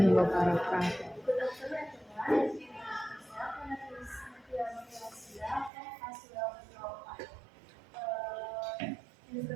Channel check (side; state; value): left; drops out; at 5.7 s